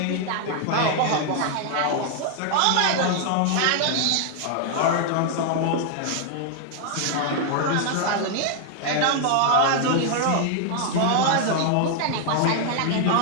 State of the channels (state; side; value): different; both; correlation 0.00